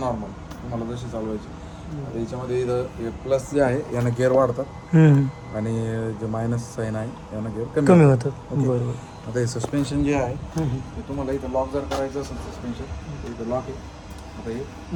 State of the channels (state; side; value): identical; both; correlation 1.00